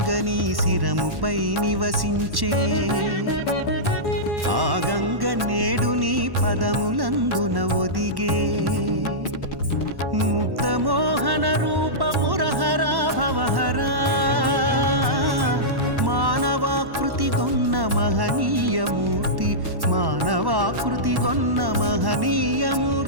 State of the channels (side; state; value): left; late; 1.1 ms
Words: శిరముపై నివసించే, ఆ గంగ నేడు నీ పదములందున ఒదిగే, ముక్తమోహన రూపమురహరా భవహరా, మానవాకృతి గొన్న మహనీయమూర్తి, మానవాకృతి గొన్న